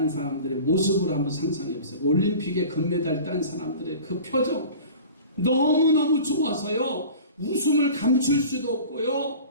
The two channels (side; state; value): both; inverted; correlation -0.40